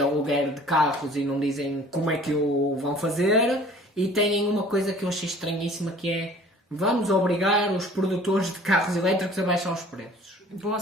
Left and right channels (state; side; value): normal; both; correlation 0.49